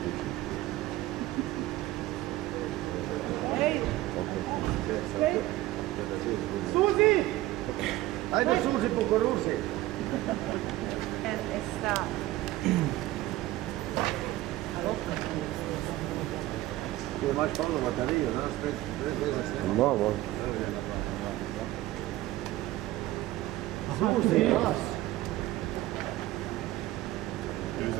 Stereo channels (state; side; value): quieter; left; 16.4 dB